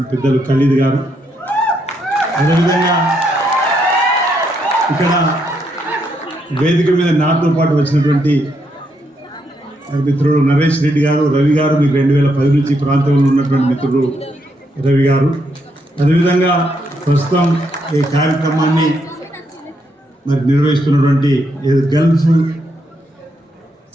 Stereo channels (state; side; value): normal; both; correlation 0.77